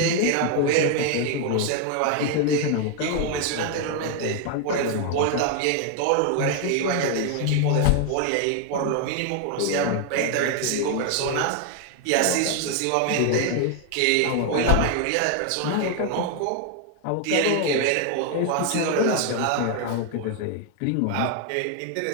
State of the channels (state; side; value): different; both; correlation 0.00